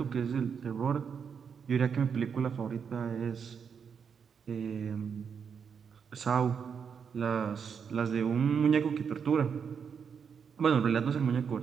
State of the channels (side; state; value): left; quieter; 6.7 dB